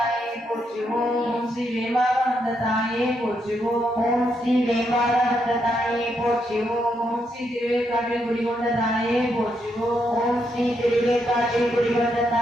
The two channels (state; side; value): normal; both; correlation 0.79